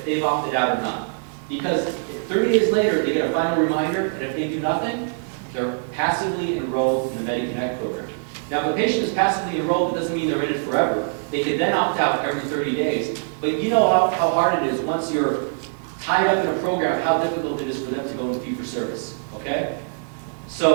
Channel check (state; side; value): silent; left; digital silence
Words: they've opted out or not. Because if 30 days later, they get a final reminder, and if they do nothing, they're passively enrolled in the MediConnect program. Now, if a patient is passively enrolled, it doesn't mean they're in it forever. They could then opt out every 30 days. But you know how hard it is once you're tied up in a program, how difficult it is for them to go into fee-for-service, okay?